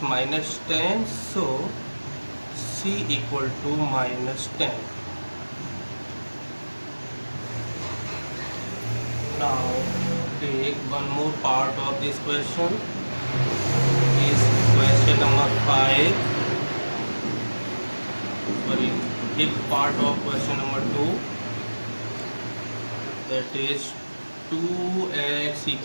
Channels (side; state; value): both; inverted; correlation -1.00